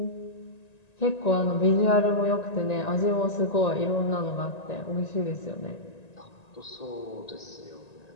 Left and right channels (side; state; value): right; late; 1.9 ms